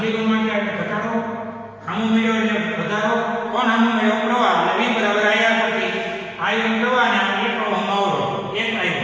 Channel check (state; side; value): identical; both; correlation 1.00